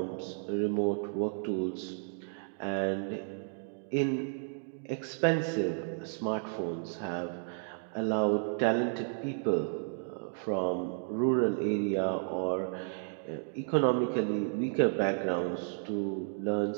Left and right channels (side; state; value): left; silent; digital silence